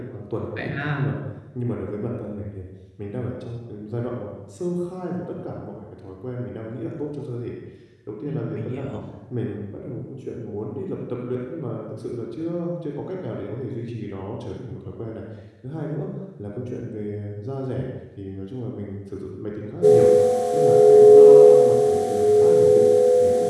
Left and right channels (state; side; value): identical; both; correlation 1.00